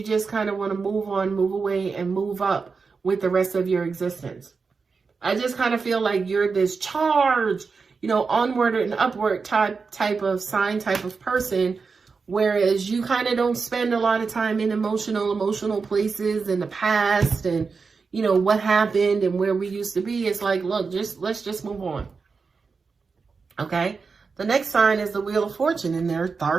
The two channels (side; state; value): left; quieter; 4.9 dB